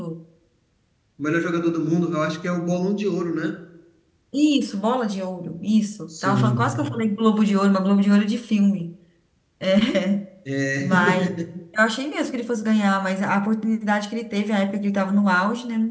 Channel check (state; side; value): identical; both; correlation 1.00